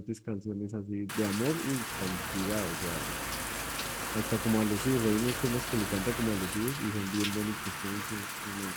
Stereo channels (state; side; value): identical; both; correlation 1.00